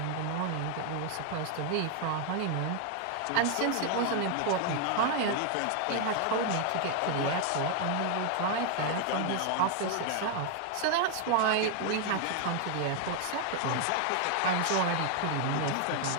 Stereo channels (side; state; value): both; different; correlation 0.00